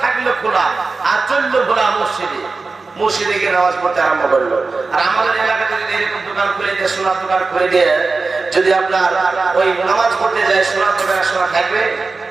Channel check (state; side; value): quieter; left; 4.0 dB